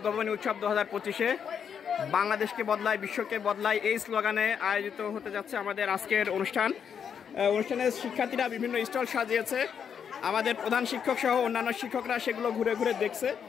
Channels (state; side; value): quieter; right; 7.5 dB